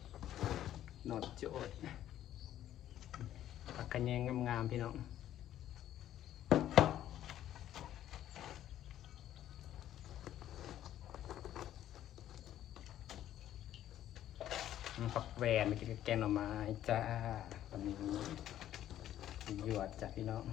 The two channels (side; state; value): right; quieter; 12.0 dB